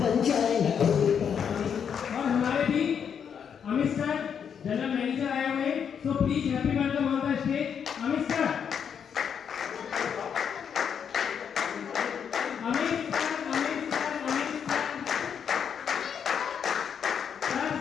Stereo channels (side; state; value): right; quieter; 7.6 dB